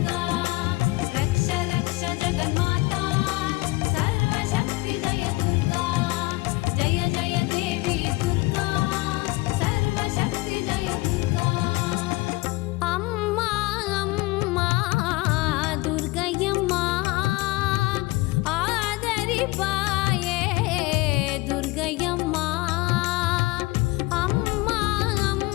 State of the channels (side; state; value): right; quieter; 21.9 dB